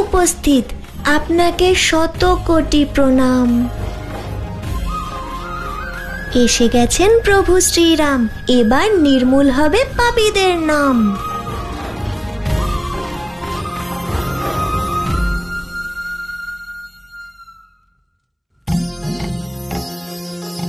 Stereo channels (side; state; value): both; identical; correlation 1.00